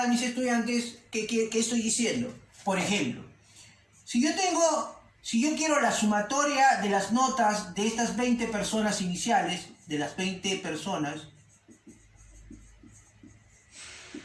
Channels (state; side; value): identical; both; correlation 1.00